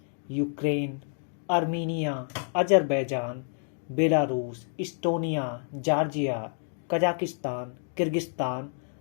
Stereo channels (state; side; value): silent; right; 57 dB below the other